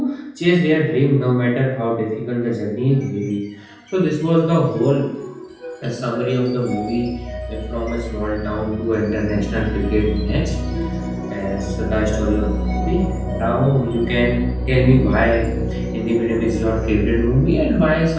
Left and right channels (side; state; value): both; identical; correlation 1.00